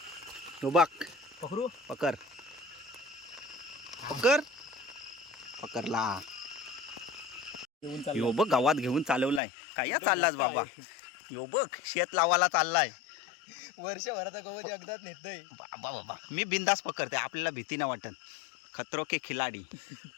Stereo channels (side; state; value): right; drops out; at 9.4 s